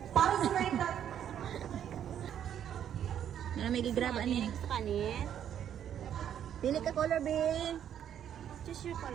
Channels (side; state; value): left; quieter; 9.7 dB